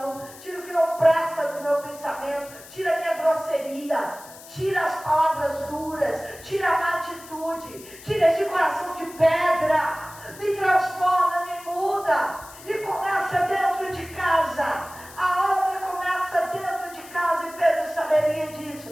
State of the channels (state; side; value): noise; left; hiss, 18 dB below the sound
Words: tira o que não presta do meu pensamento, tira a minha grosseria, tira as palavras duras, tira a má atitude, tira esse coração de pedra, me transforma, me muda. E começa dentro de casa. A obra começa dentro de casa. E Pedro saberia disso.